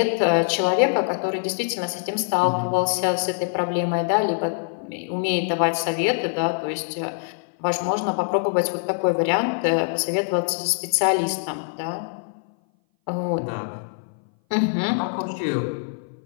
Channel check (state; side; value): silent; right; 58 dB below the other